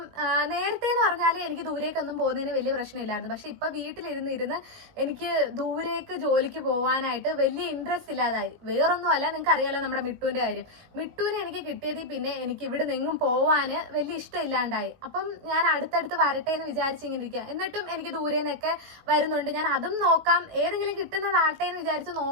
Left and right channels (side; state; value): left; late; 18 ms